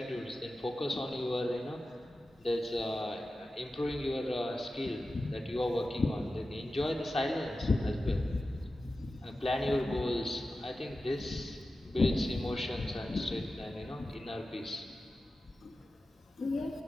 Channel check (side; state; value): both; normal; correlation 0.94